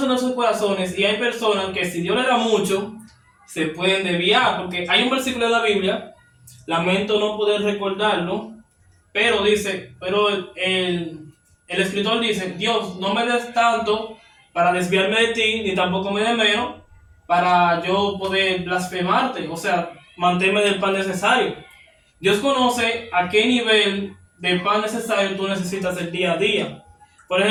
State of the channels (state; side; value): identical; both; correlation 1.00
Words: nuestros corazones y hay personas que si Dios le da mucho, se pueden desviar, porque hay un versículo de la Biblia, lamento no poder recordarlo, pero dice, pero el escritor dice, Dios, no me des tanto para desviarme de ti, ni tampoco me des menos para yo poder blasfemarte, o sea, manténme del pan necesario. Dios conoce a qué nivel de pan necesario tú necesitas el día a día. Por